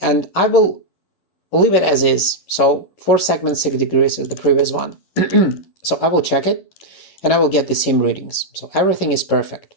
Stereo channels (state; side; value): late; right; 11 ms